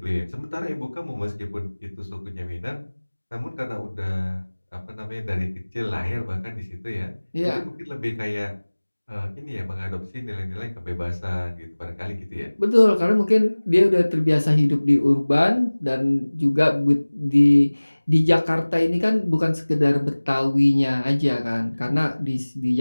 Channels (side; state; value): both; inverted; correlation -1.00